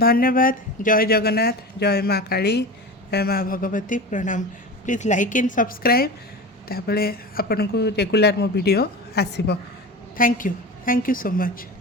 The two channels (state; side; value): normal; both; correlation 0.29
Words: जय जगन्नाथ, जय माँ काली, जय माँ भगवती। प्रणाम। प्लीज लाइक एंड सब्सक्राइब तापरे आपन को रेगुलर मो वीडियो आसीबो। Thank you so much.